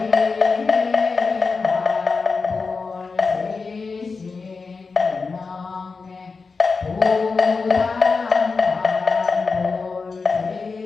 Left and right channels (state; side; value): quieter; right; 4.6 dB